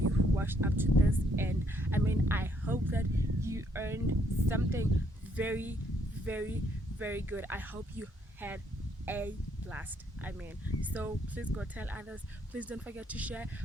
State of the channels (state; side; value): normal; both; correlation 0.70